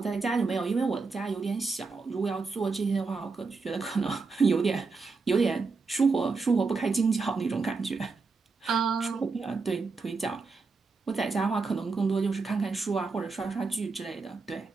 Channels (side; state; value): left; quieter; 4.3 dB